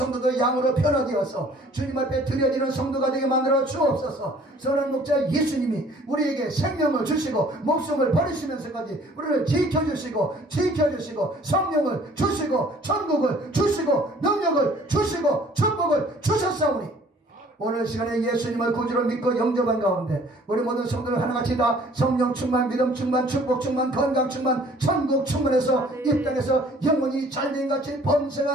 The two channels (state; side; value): normal; both; correlation 0.55